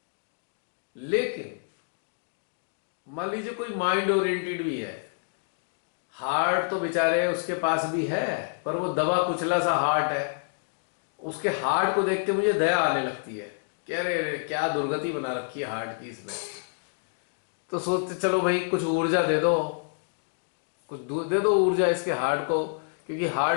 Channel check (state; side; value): silent; right; digital silence